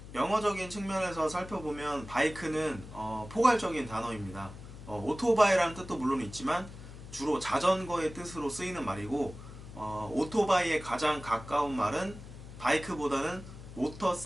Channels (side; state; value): left; noise; hum, 14 dB below the sound